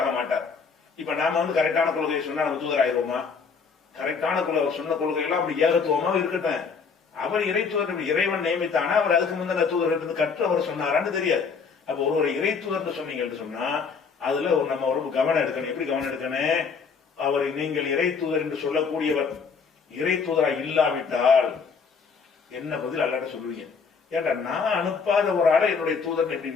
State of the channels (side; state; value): right; quieter; 5.5 dB